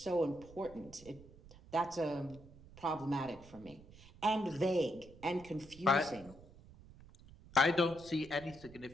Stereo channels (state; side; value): noise; right; rumble, 20 dB below the sound